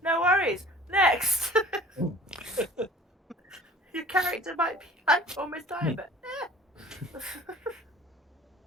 no worries, next! Your character might be like almost dying, but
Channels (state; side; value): normal; both; correlation 0.47